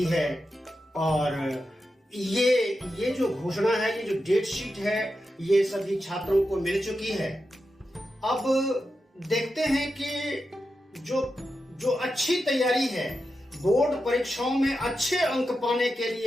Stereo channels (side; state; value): both; normal; correlation 0.89